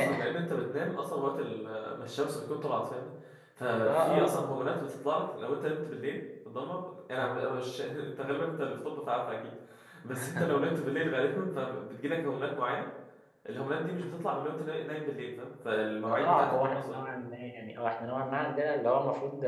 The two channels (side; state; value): both; identical; correlation 1.00